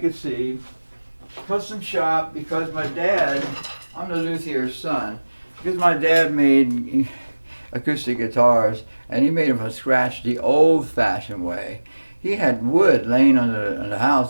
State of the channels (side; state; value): both; inverted; correlation -1.00